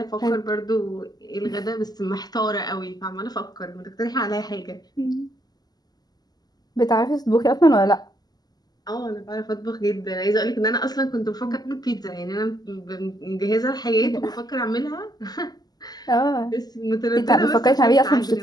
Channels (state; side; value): late; right; 0.20 ms